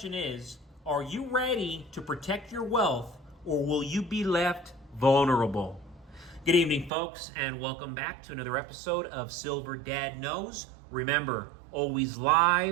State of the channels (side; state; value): left; drops out; at 6.9 s